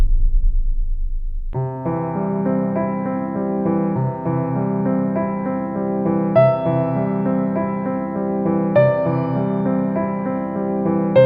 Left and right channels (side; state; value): both; identical; correlation 1.00